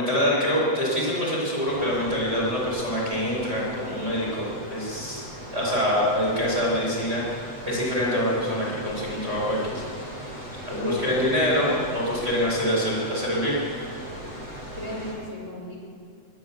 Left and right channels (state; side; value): late; left; 8.0 ms